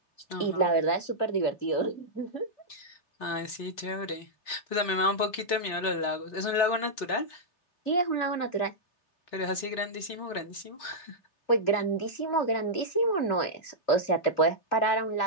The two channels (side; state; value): right; late; 3.7 ms